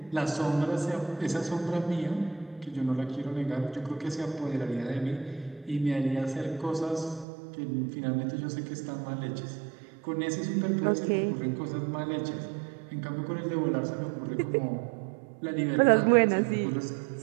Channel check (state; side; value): drops out; left; at 7.2 s